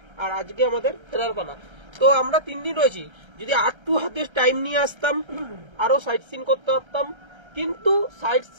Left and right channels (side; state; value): left; late; 1.3 ms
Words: আর আজকে আমাদের ফেরার পালা। তো আমরা 3 দিন রয়েছি, যদি আরটু হাতে টাইম নিয়ে আসতাম আরো সাইট সিন করতে পারতাম। কিন্তু সাইট